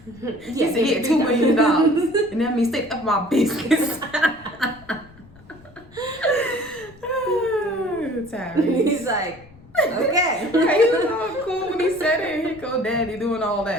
Yes, he said, $2 million. And that means stay up my business. Tyrese. He's like, okay. He was all cool when he said it. Here go daddy doing all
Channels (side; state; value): left; noise; rumble, 24 dB below the sound